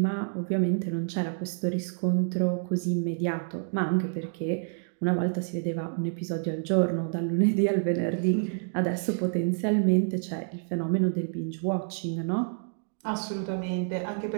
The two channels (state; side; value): silent; left; digital silence